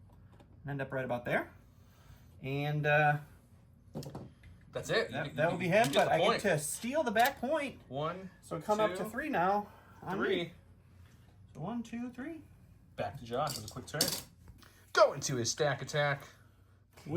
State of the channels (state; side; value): identical; both; correlation 1.00